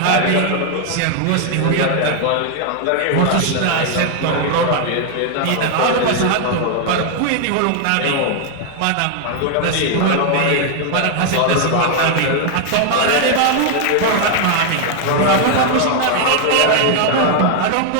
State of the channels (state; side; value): different; both; correlation 0.00